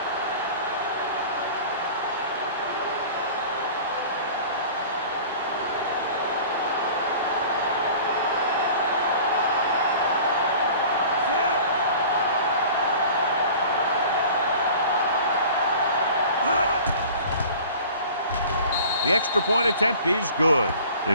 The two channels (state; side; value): inverted; both; correlation -0.43